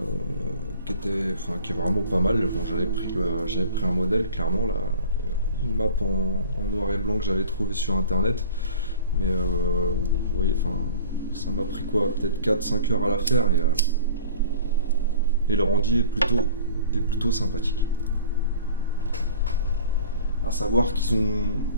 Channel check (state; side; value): inverted; both; correlation -0.45